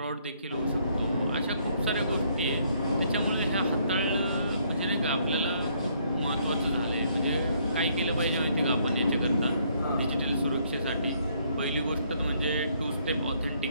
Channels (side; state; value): both; inverted; correlation -0.68